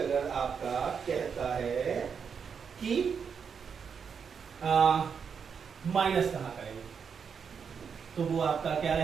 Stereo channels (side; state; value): left; quieter; 6.5 dB